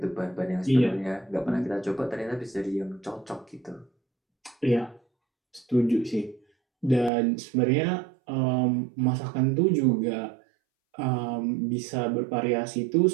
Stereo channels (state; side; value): drops out; left; at 7.1 s